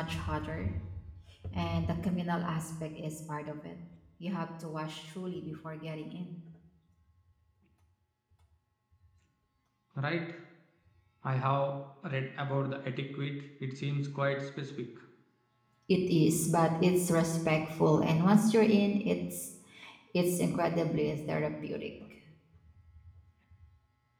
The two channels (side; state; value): both; identical; correlation 1.00